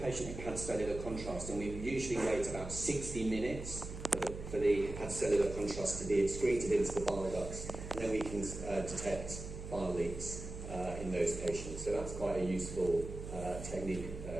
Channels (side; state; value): right; noise; hum, 9 dB below the sound